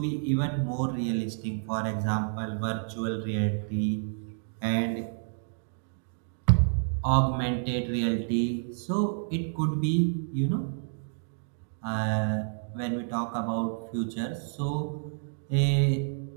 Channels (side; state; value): left; silent; digital silence